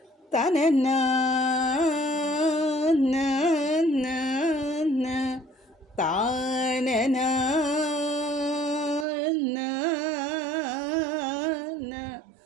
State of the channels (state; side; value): drops out; left; at 9.1 s